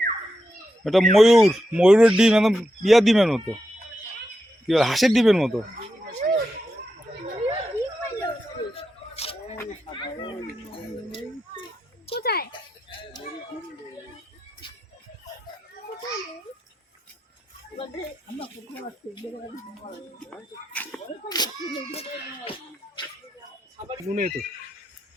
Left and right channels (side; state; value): both; normal; correlation 0.87